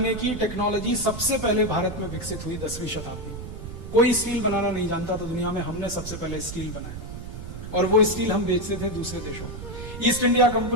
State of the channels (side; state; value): right; noise; rumble, 10 dB below the sound